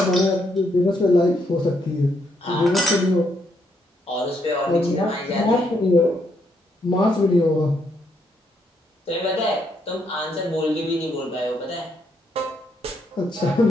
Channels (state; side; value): normal; both; correlation 0.75